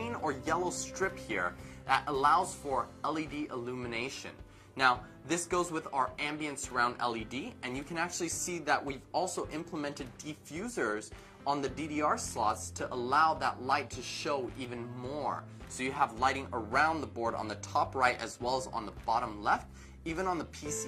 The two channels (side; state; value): both; identical; correlation 1.00